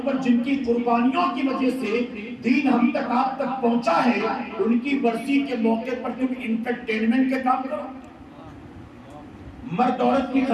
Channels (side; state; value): both; identical; correlation 1.00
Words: پر جن کی قربانیوں کی وجہ سے دین ہم تک آپ تک پہنچا ہے، ان کی برسی کے موقع پر تم انٹرٹینمنٹ کے کام کرو. مرد عورت کی